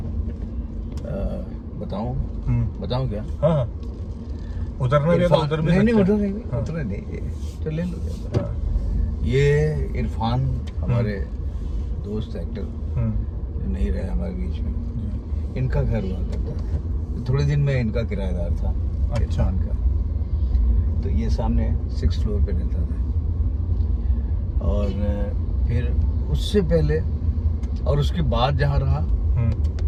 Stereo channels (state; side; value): identical; both; correlation 1.00